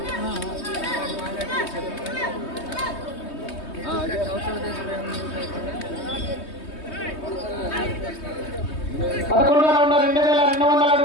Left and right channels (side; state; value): right; late; 3.2 ms